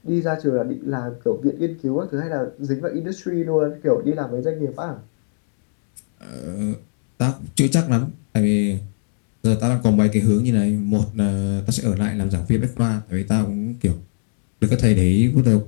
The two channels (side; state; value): right; silent; digital silence